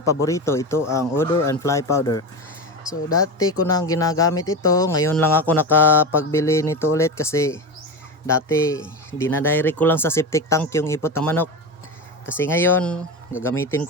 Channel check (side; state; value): both; normal; correlation 0.21